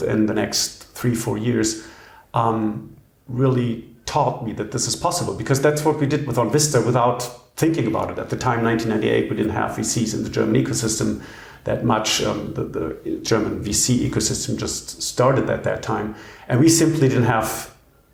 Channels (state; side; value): identical; both; correlation 1.00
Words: the next 3-4 years, really taught me that this is possible, because that's what we did with Vista without thinking about it. At the time, 1998, we didn't have VCs in the German ecosystem that much. The German VC ecosystem just started at that time. And we simply didn't have